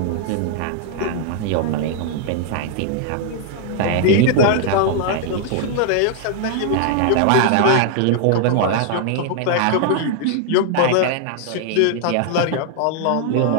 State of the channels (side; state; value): both; different; correlation 0.00